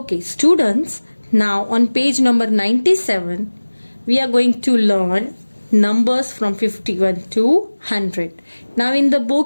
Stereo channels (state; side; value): inverted; both; correlation -1.00